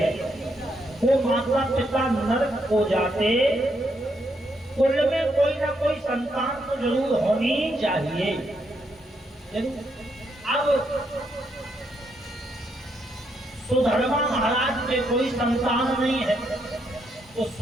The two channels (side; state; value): both; normal; correlation 0.77